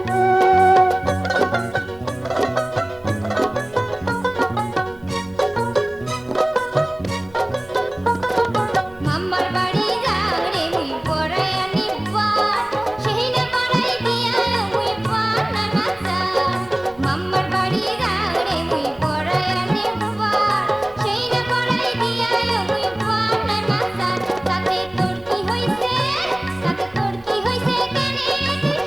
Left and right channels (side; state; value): right; noise; hum, 26 dB below the sound